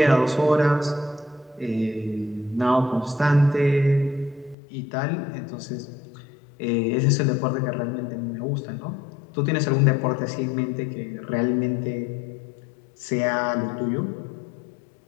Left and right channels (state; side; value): drops out; right; at 4.5 s